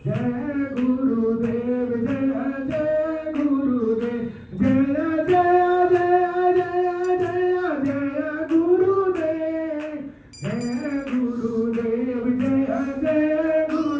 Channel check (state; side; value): identical; both; correlation 1.00